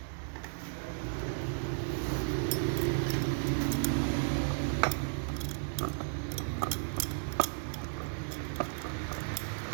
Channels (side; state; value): left; silent; 55 dB below the other